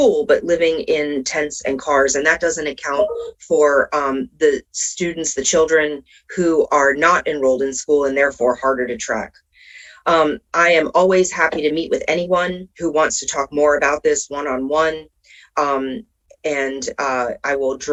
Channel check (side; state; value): both; identical; correlation 1.00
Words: but living in tents and cars. And that doesn't account for the students, the children who are not enrolled in school and therefore harder to track. I am always happy to meet with anyone who wants to talk more about this one-on-one. And I will